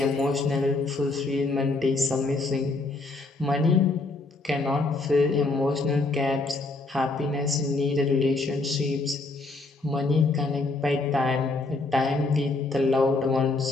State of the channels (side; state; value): right; quieter; 3.4 dB